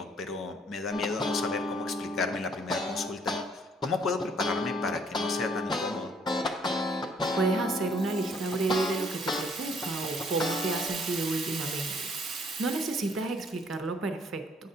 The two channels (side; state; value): both; normal; correlation 0.63